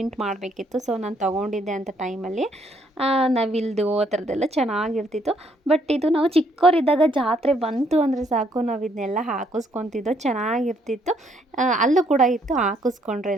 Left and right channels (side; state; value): both; normal; correlation 0.69